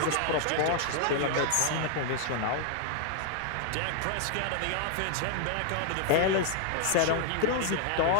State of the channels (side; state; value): both; different; correlation 0.00